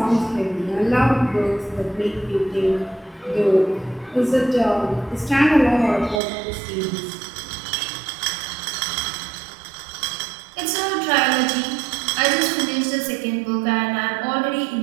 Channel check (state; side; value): drops out; left; at 6.2 s